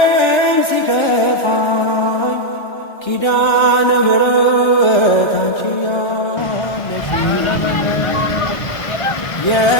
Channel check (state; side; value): late; right; 1.3 ms